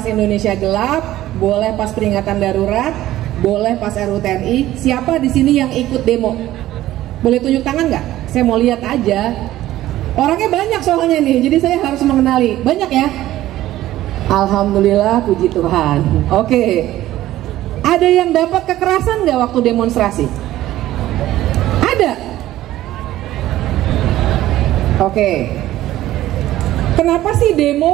Indonesia gelap, boleh pas peringatan darurat, boleh pas RUTNI? Siapa di sini yang ikut demo? Boleh tunjuk tangan nggak? Saya mau lihat aja. Orangnya banyak soalnya nih, jadi saya harus mengenali. Banyak ya? Alhamdulillah, puji Tuhan. Oke. Ada yang dapat kekerasan nggak waktu demonstrasi? Ada. Oke. Kenapa sih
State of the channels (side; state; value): left; quieter; 14.7 dB